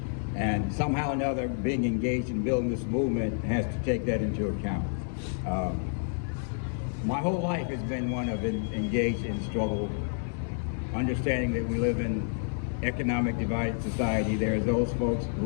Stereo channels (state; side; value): silent; right; digital silence